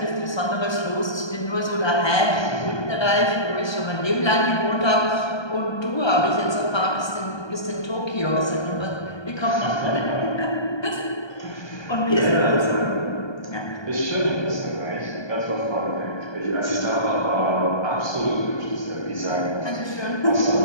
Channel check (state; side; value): late; right; 1.2 ms